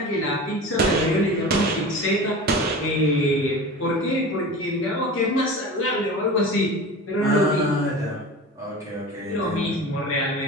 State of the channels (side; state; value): both; normal; correlation 0.33